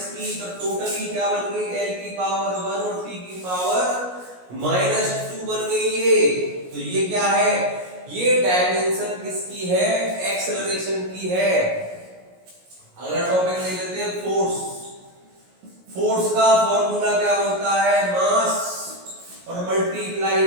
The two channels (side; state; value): left; late; 17 ms